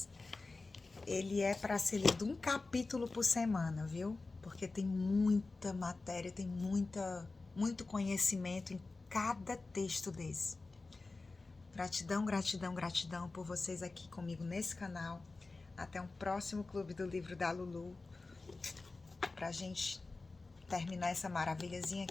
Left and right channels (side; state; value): right; quieter; 3.6 dB